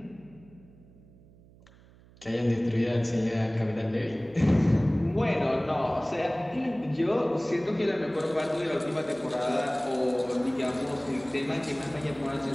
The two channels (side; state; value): right; noise; hum, 25 dB below the sound